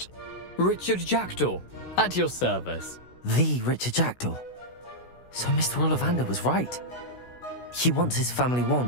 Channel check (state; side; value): late; right; 16 ms